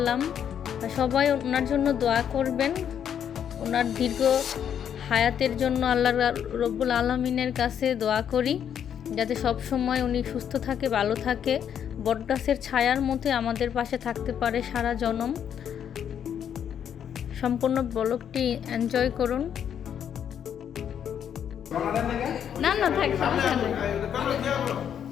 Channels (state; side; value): quieter; right; 8.8 dB